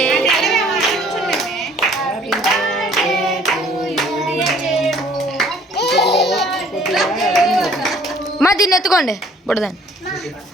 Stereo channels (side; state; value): both; normal; correlation 0.57